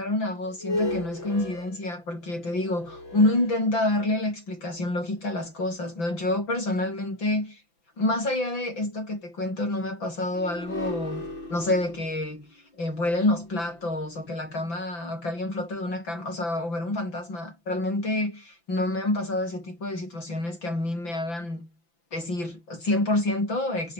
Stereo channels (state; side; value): late; right; 5.9 ms